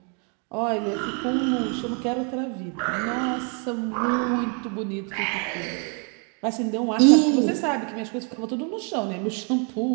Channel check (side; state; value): left; quieter; 38.1 dB